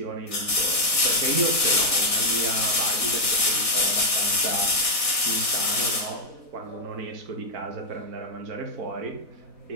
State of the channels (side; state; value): left; late; 4.0 ms